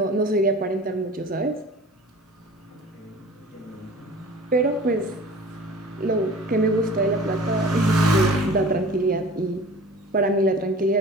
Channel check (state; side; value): normal; both; correlation 0.42